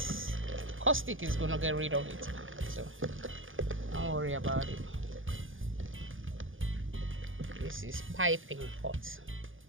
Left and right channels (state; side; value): late; left; 0.58 ms